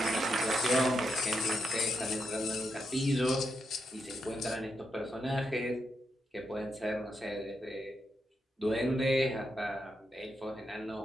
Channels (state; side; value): normal; both; correlation 0.83